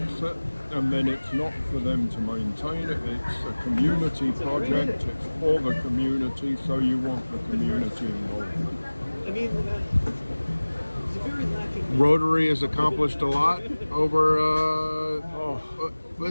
it, and then it's not for them to maintain it. It's a community project. It's for the community, so you want the community involvement. Rotary has accomplished a lot over,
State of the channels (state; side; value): inverted; both; correlation -1.00